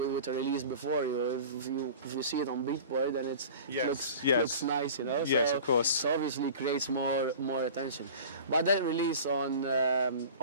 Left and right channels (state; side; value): inverted; both; correlation -0.40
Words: a release before you, if you see it on Beatport, then it looks nice, you know. Yes, of course. So obviously creates more attention. But that release on